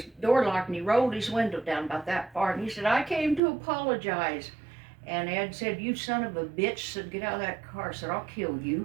door locked, and he rolled his window down about that far, and he said, I came to apologize. And Ed said, you son of a bitch, said, get out of that car. I said, I'll kill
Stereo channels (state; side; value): drops out; left; at 3.4 s